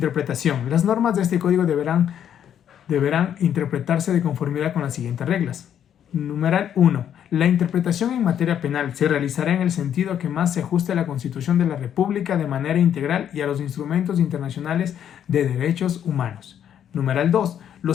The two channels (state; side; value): quieter; right; 9.5 dB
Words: Las normas de este código deberán interpretarse de conformidad con las siguientes reglas. Numeral 1. La interpretación en materia penal se realizará en el sentido que más se ajuste a la Constitución de la República de manera integral y a los instrumentos internacionales de derechos humanos. Numeral 2.